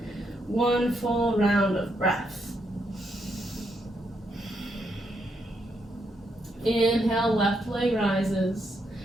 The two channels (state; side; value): normal; both; correlation 0.78